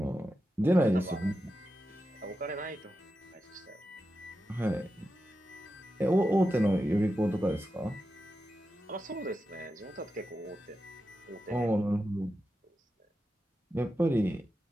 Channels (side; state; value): both; normal; correlation 0.90